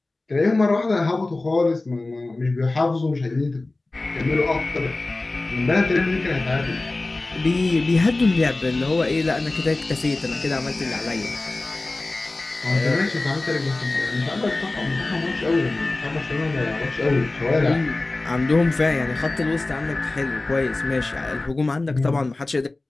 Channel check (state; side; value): quieter; right; 3.1 dB